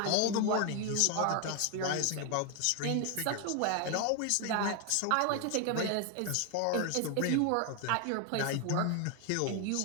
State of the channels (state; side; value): different; both; correlation 0.01